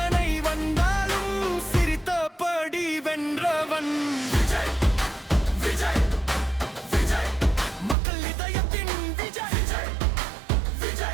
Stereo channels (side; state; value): left; drops out; at 8.0 s